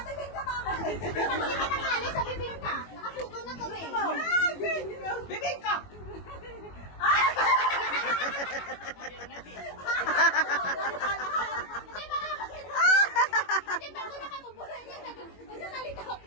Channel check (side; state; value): right; late; 21 ms